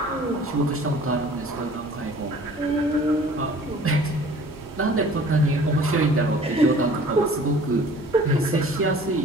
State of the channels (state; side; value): normal; both; correlation 0.49